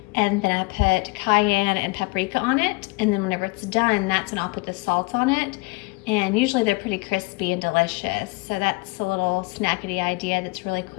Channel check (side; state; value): right; quieter; 26.4 dB